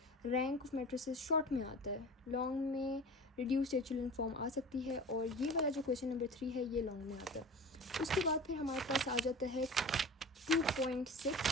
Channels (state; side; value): normal; both; correlation 0.36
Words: रैंक ऑफ मैट्रिसेस शॉर्ट में आता है, लॉन्ग में रिड्यूस्ड एचुलन फॉर्म आ सकती है, और ये वाला जो क्वेश्चन नंबर 3 है ये लॉन्ग में आता है। उसके बाद फिर हमारे पास आ जाता है